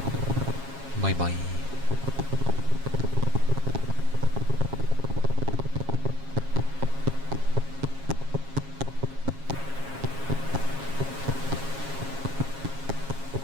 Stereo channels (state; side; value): late; left; 7.4 ms